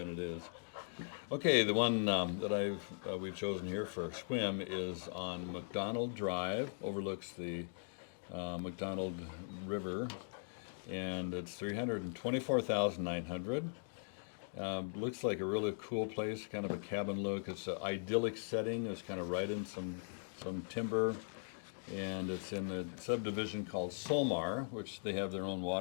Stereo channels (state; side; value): silent; right; digital silence